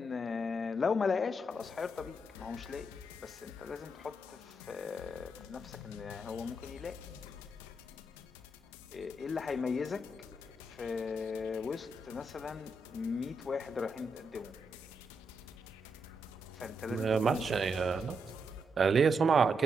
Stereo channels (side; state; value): both; normal; correlation 0.82